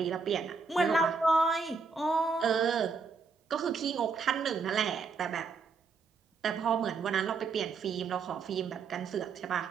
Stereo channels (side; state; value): left; quieter; 4.8 dB